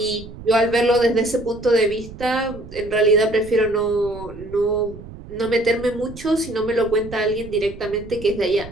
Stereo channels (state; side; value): noise; right; rumble, 15 dB below the sound